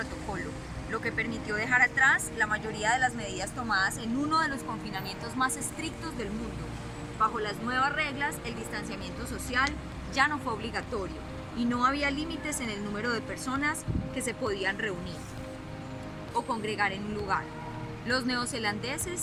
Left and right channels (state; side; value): identical; both; correlation 1.00